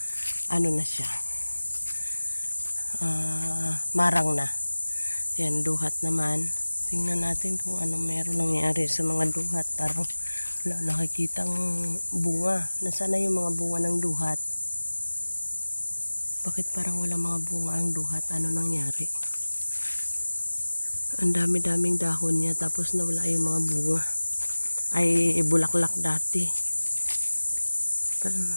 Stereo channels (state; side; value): inverted; both; correlation -1.00